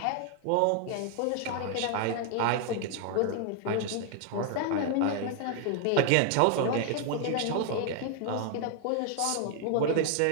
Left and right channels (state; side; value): different; both; correlation 0.00